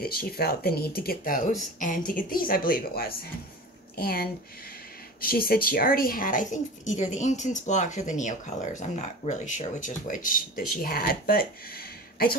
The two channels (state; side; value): normal; both; correlation 0.34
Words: she felt the need to get those, and to get these, I believe it was. And she said she already had, I think, either the Ink Tints blocks or the Neo Colors. I'm not really sure which is which that she had. But I